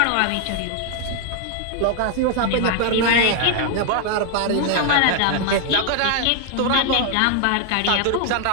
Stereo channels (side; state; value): both; different; correlation 0.00